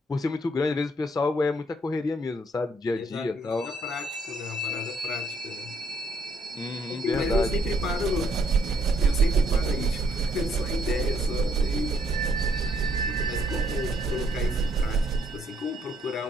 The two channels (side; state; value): both; normal; correlation 0.68